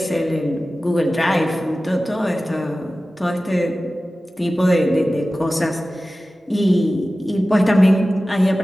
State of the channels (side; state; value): both; normal; correlation 0.96